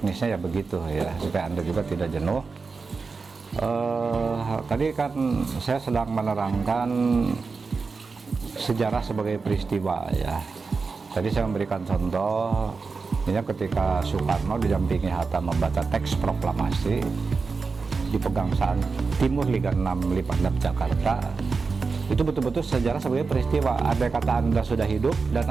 ya begitu ya, supaya Anda juga tidak jenuh. Tadi kan saya sedang menerangkan sejarah sebagai peristiwa ya. Tadi saya memberikan contoh, ini ketika Soekarno didampingi Hatta membaca teks proklamasi di Pegangsaan Timur Liga 6 Lipandap Jakarta. Itu betul-betul sejarah sebagai peristiwa. Andai kata Anda sudah hidup dan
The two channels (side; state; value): left; quieter; 4.5 dB